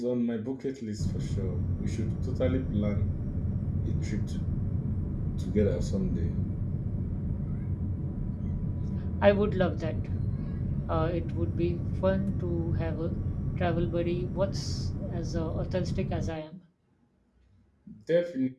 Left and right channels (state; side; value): identical; both; correlation 1.00